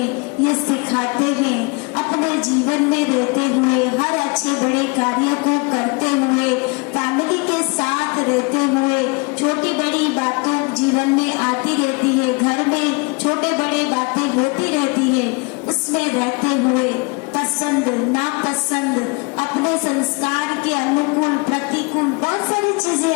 ये सिखाते हैं, अपने जीवन में रहते हुए, हर अच्छे बड़े कार्य को करते हुए, फैमिली के साथ रहते हुए, छोटी बड़ी बातों जीवन में आती रहती है, घर में छोटे बड़े बातें होती रहती है, उसमें रहते हुए पसंद नापसंद, अपने संस्कार के अनुकूल प्रतिकूल बहुत सारी चीजें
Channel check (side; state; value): right; quieter; 29.8 dB